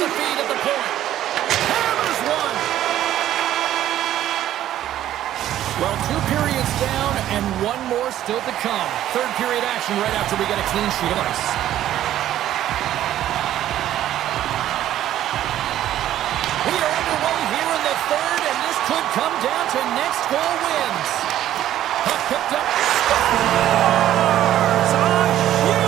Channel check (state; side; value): quieter; left; 12.4 dB